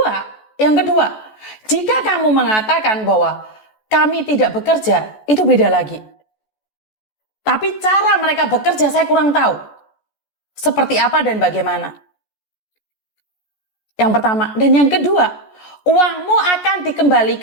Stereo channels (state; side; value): late; right; 14 ms